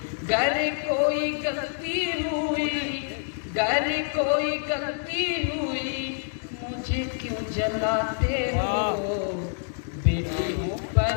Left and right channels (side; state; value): right; silent; digital silence